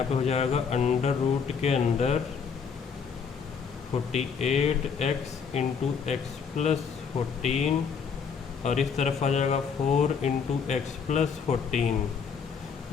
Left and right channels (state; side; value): quieter; right; 6.2 dB